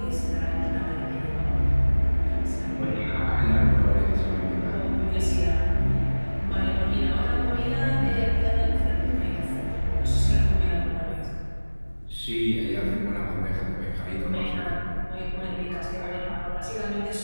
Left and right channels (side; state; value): both; inverted; correlation -1.00